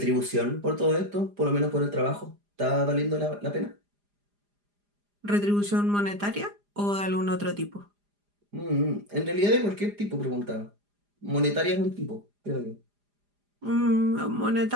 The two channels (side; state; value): left; late; 4.9 ms